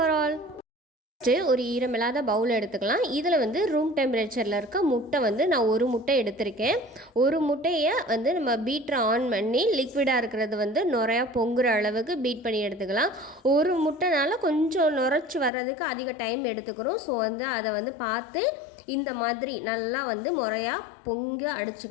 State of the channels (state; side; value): drops out; right; at 15.5 s